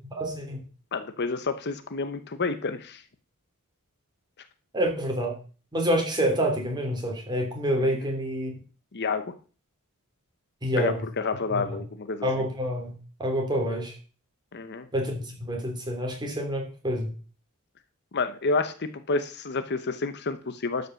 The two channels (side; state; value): both; normal; correlation 0.21